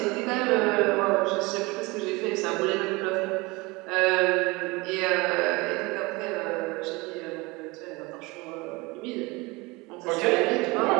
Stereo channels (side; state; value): left; quieter; 24.2 dB